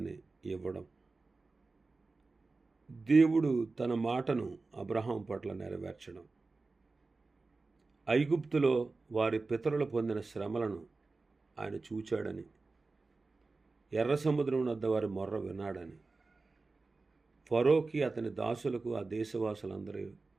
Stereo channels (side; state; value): left; quieter; 3.7 dB